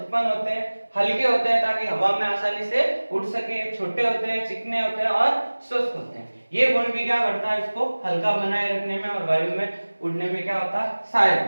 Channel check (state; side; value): inverted; both; correlation -1.00